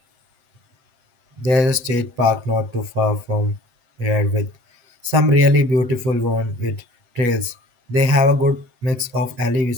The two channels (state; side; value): late; left; 8.2 ms